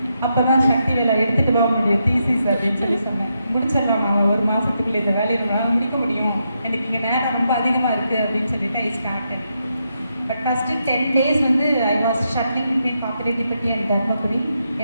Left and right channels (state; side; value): inverted; both; correlation -0.82